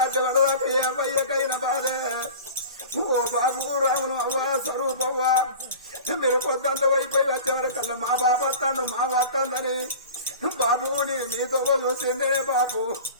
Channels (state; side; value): inverted; both; correlation -0.38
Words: ఏ అబ్బాయికైనా బాధ ఓ బాబు రామును అవ్వా స్వరూపవ్వా మీరు పొద్దంత అయిపోయి వచ్చేవరకల్లా మా బాబు వస్తాడు మా వస్తుందని బాబు నీతో చూసిందే బాబు